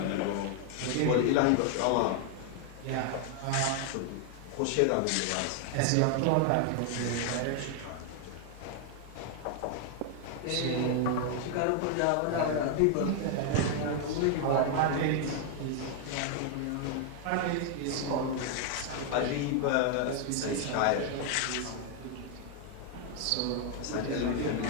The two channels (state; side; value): different; both; correlation 0.00